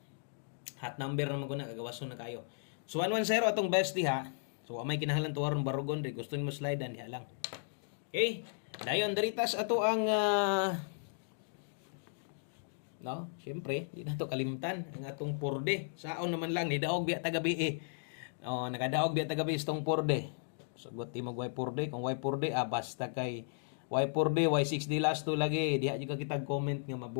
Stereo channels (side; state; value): right; silent; digital silence